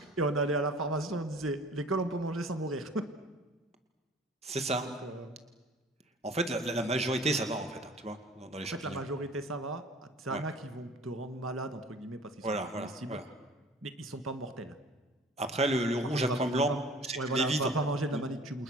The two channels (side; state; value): both; normal; correlation 0.47